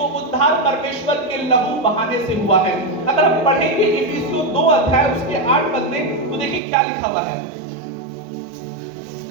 उद्धार परमेश्वर के लहू बहाने से हुआ है। अगर हम पढ़ेंगे इफिसियों 2 अध्याय उसके 8 पद में तो देखिए क्या लिखा हुआ है।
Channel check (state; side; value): drops out; left; at 6.6 s